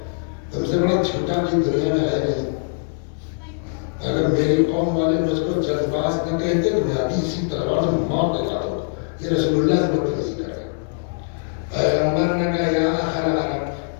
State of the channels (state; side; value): silent; right; digital silence